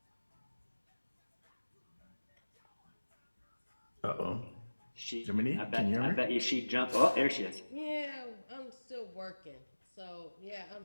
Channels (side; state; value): both; inverted; correlation -1.00